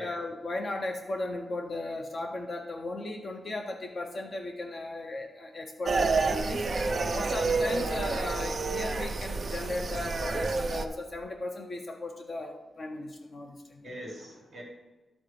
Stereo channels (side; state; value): both; normal; correlation 0.88